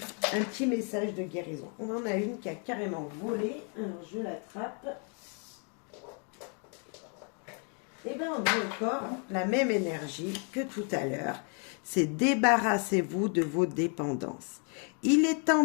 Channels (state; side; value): quieter; right; 39.3 dB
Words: petit message de guérison. On en a une qui a carrément volé. Alors, je l'attrape. Et bien, on a encore la même énergie que tout à l'heure. C'est débarrassez-vous de vos dépendances. Il est temps